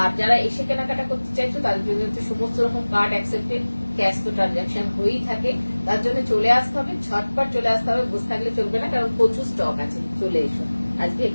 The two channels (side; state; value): both; inverted; correlation -1.00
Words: যারা এসে কেনাকাটা করতে চাইছো তাদের জন্য হচ্ছে সমস্ত রকম কার্ড অ্যাকসেপ্টেড, ক্যাশ তো ট্রানজাকশন হয়েই থাকে। তার জন্য চলে আসতে হবে, ঝটপট চলে আসতে হবে, বসে থাকলে চলবে না, কারণ প্রচুর স্টক আছে। চলে এসো, আজকে